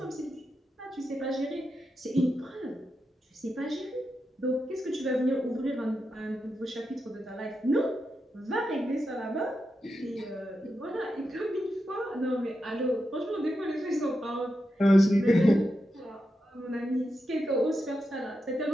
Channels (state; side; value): normal; both; correlation 0.87